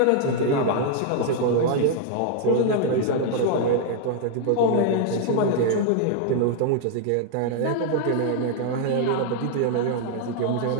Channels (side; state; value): both; different; correlation 0.00